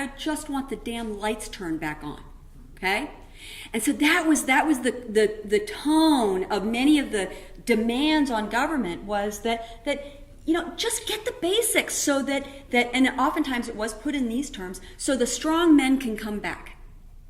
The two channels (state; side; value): identical; both; correlation 1.00